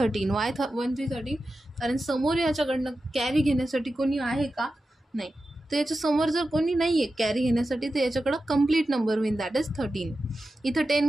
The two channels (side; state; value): both; normal; correlation 0.92